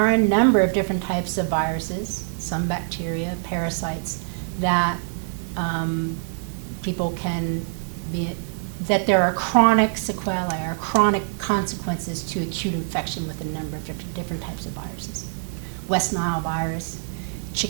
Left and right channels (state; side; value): silent; left; 62 dB below the other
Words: a number of different types of viruses, some bacteria, parasites, that people can be, that there are chronic sequelae or chronic consequences to acute infection with a number of different types of viruses. West Nile virus,